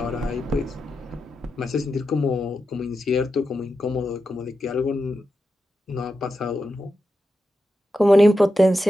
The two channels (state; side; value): normal; both; correlation 0.88